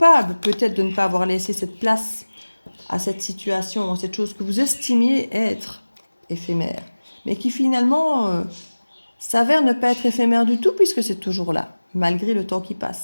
peut-être de ne pas avoir laissé cette place à cette situation, à cette chose que vous estimiez être éphémère, mais qui finalement s'avère ne pas être éphémère du tout puisque c'est toujours là, malgré le temps qui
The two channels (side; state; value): both; inverted; correlation -1.00